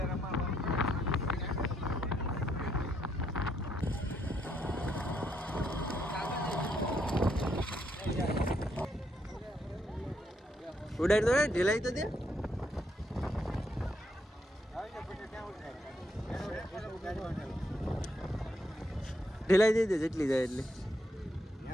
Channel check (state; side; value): normal; both; correlation 0.76